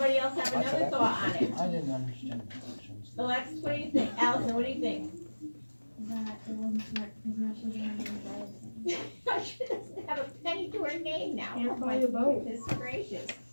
else have another thought on it? I didn't understand the questions. Alexis, what do you think? Allison, what do you think? That it wasn't smart because now she doesn't have any credit. She doesn't have a penny to her name now. Can't Oh buy my a boat. goodness gracious.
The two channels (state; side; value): inverted; both; correlation -1.00